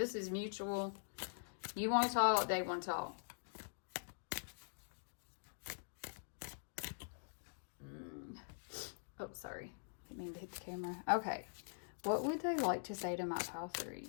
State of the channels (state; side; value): silent; right; digital silence